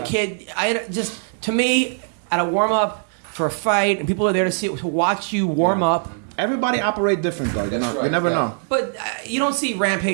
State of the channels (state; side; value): silent; left; 59 dB below the other